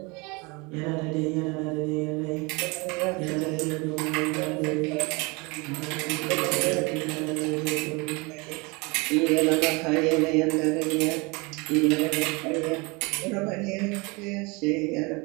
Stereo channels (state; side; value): quieter; left; 27.4 dB